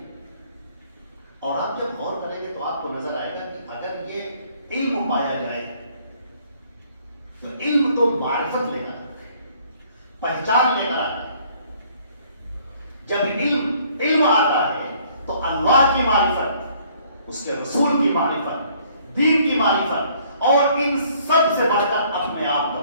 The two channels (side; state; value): both; inverted; correlation -0.61